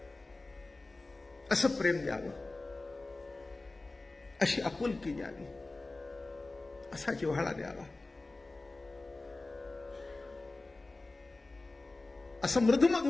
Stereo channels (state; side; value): quieter; right; 3.2 dB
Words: असं प्रेम द्यावं, अशी आपुलकी द्यावी, असा जिव्हाळा द्यावा, असं